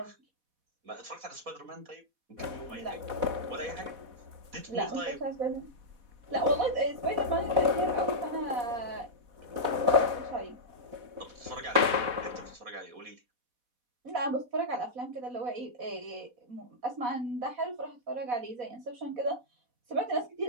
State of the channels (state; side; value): late; left; 4.1 ms